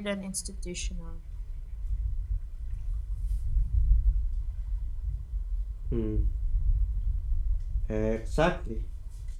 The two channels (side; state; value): both; identical; correlation 1.00